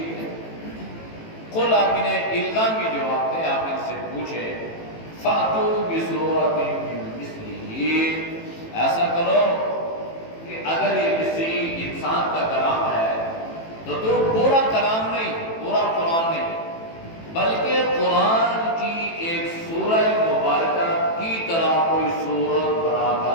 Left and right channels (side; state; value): right; late; 18 ms